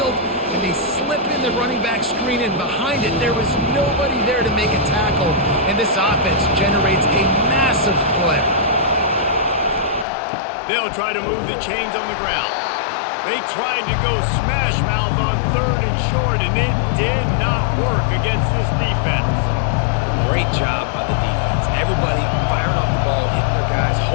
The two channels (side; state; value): right; drops out; at 10.1 s